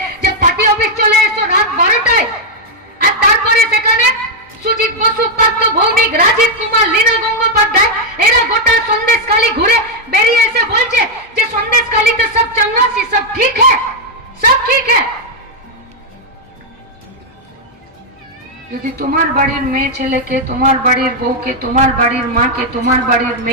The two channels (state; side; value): normal; both; correlation -0.01